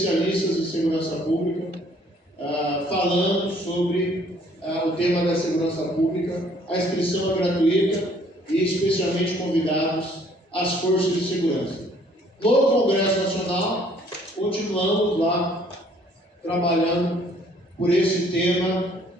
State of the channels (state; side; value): normal; both; correlation 0.60